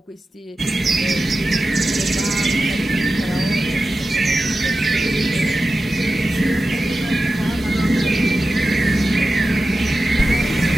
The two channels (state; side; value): normal; both; correlation 0.93